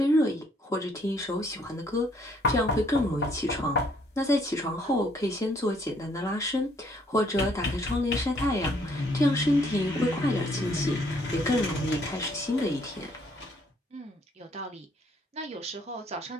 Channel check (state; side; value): normal; both; correlation 0.66